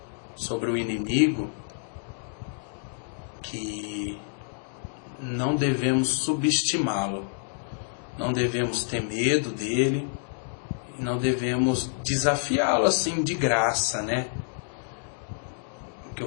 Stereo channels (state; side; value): silent; right; digital silence